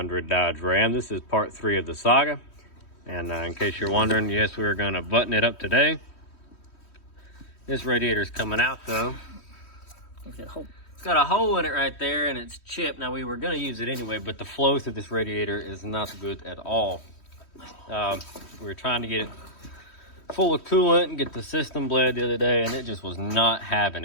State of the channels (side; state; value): right; late; 3.1 ms